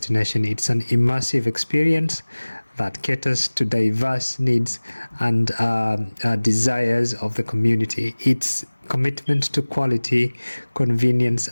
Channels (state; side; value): inverted; both; correlation -1.00